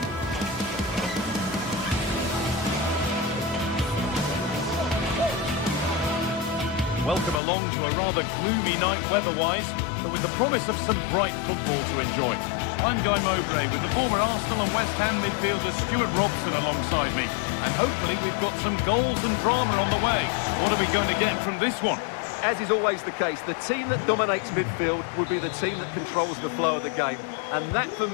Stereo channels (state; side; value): drops out; right; at 7.4 s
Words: Welcome along to a rather gloomy night weather-wise, but with the promise of some bright football to enjoy. I'm Guy Mowbray with the former Arsenal and West Ham midfielder Stuart Robson alongside me. And hopefully we've got some goals and drama on the way. What are we going to get from this one? As is always the case, the team that dominates midfield will be the team that controls the flow of the game. And that, for